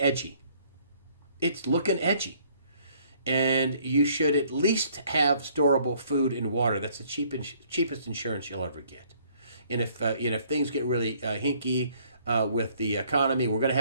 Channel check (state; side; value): inverted; both; correlation -0.62